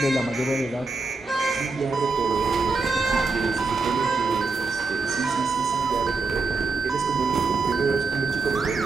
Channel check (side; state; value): left; quieter; 3.9 dB